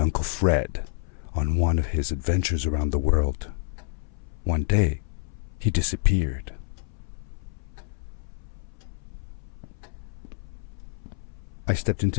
Fred on one of his adventures around the world. One day, he disappeared. I stepped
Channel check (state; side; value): silent; right; 59 dB below the other